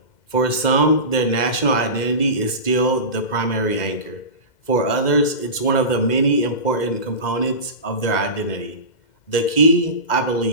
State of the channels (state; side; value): late; right; 2.0 ms